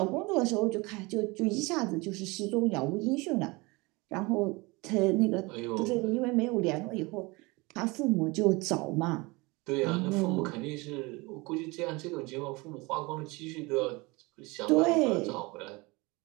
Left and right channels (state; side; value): quieter; left; 24.9 dB